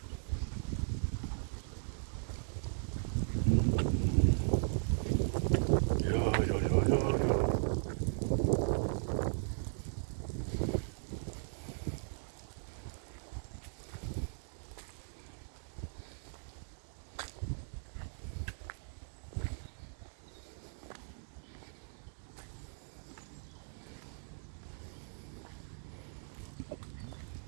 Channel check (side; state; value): left; silent; digital silence